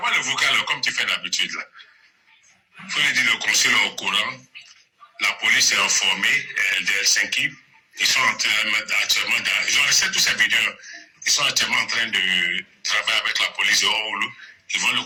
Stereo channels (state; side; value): identical; both; correlation 1.00